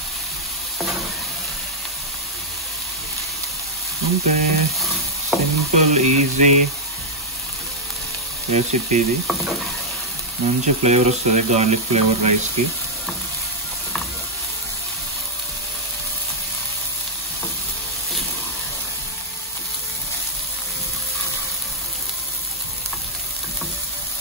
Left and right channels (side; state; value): both; normal; correlation -0.04